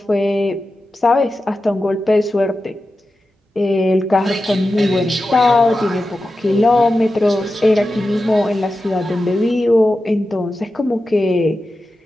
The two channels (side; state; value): both; normal; correlation 0.92